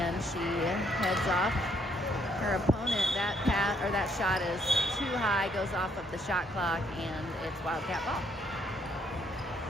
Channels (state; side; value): normal; both; correlation 0.69